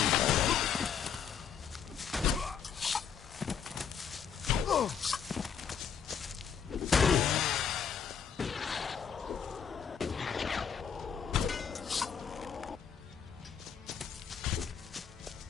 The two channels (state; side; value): quieter; right; 7.3 dB